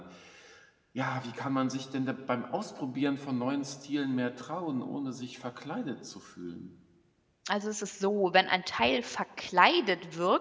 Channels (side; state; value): both; identical; correlation 1.00